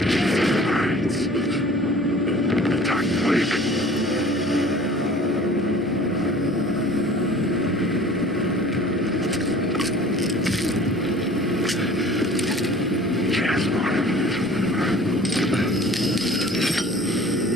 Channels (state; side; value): normal; both; correlation 0.47